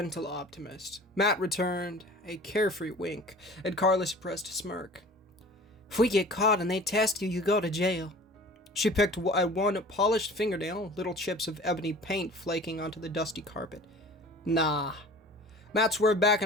optimist, Matt returned a carefree wink at Carla's suppressed smirk. If we get caught and they test you, you go to jail. She picked at one polished fingernail, little chips of ebony paint flaking onto the dusty carpet. Nah. Matt swerved back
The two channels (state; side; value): normal; both; correlation 0.43